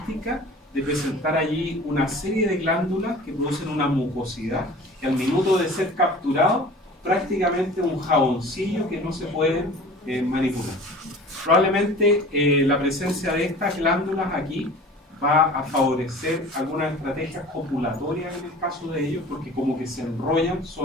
de presentar allí una serie de glándulas que producen una mucosidad que al minuto de ser capturado prácticamente un jaboncillo que no se puede manipular. Probablemente la presencia de estas glándulas aquí va a favorecer algunas estrategias copulatorias en el caso de ellos, porque como que se enrollan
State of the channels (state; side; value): normal; both; correlation 0.42